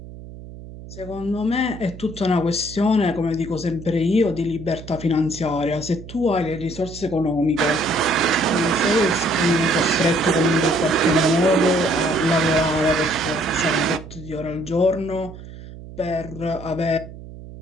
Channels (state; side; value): noise; right; hum, 15 dB below the sound